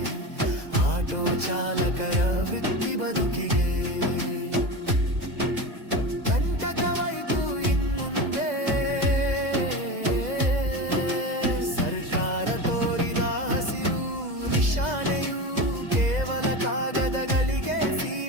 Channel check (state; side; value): late; left; 2.0 ms